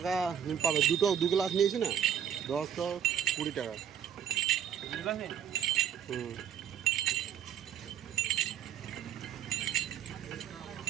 পাবে। দু গ্লাস নিয়েছি না, 10 10 20 টাকা। হুম।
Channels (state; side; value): quieter; left; 8.8 dB